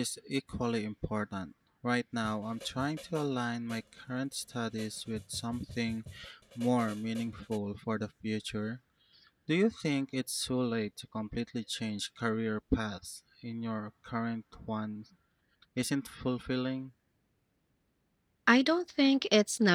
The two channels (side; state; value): both; identical; correlation 1.00